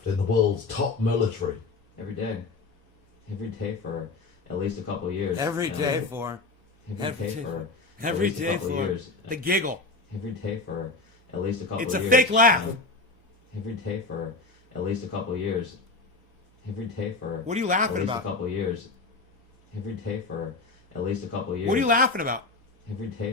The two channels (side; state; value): right; quieter; 3.6 dB